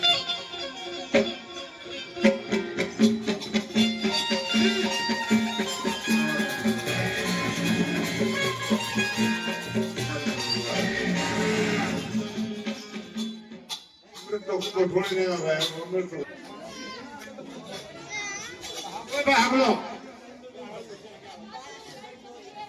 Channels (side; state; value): both; identical; correlation 1.00